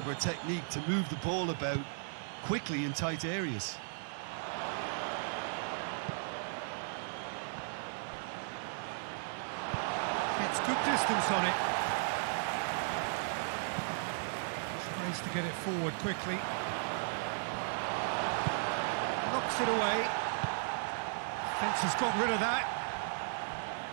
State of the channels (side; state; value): left; silent; 54 dB below the other